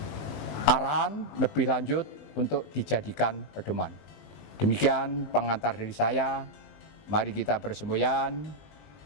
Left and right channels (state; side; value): late; right; 20 ms